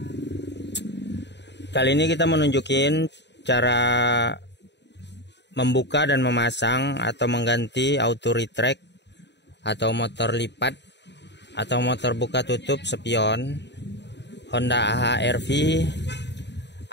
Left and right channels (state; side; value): late; right; 0.51 ms